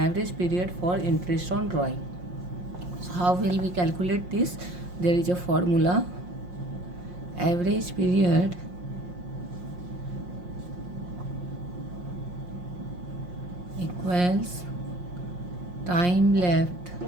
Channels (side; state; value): left; late; 5.6 ms